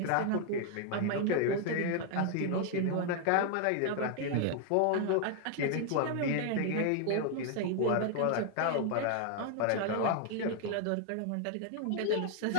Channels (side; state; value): both; different; correlation 0.00